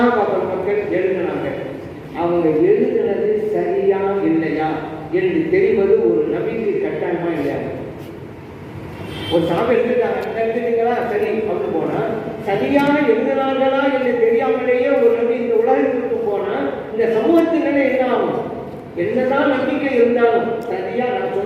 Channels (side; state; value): both; identical; correlation 1.00